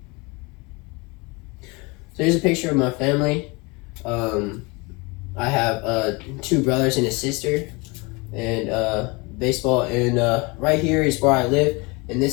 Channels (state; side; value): quieter; right; 27.1 dB